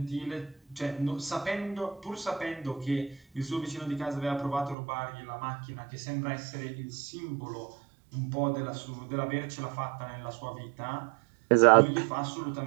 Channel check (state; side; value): drops out; left; at 4.8 s